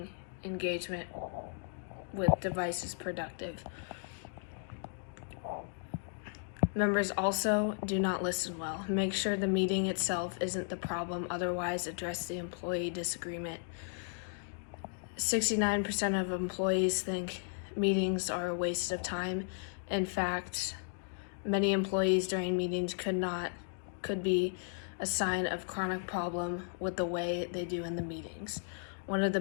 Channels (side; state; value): right; silent; digital silence